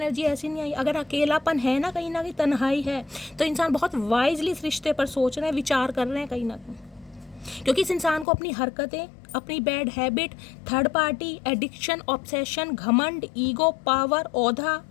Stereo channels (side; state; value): right; drops out; at 8.2 s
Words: ऐसी नहीं आई। अगर अकेलापन है ना कहीं तन्हाई है, तो इंसान बहुत वाइजली इस रिश्ते पर सोच रहे हैं, विचार कर रहे हैं कहीं ना कहीं, क्योंकि इस इंसान को अपनी हरकतें, अपनी bad habit, third party, addiction, obsession, घमंड, ईगो, पावर, ओहदा,